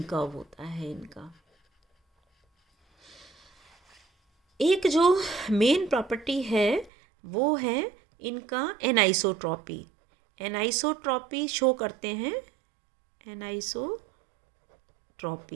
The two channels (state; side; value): drops out; left; at 6.9 s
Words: कर्व होता है इनका। एक जो मेन प्रॉपर्टी है वो है इनका एनाइसोट्रॉपी। एनाइसोट्रॉपी शो करते हैं,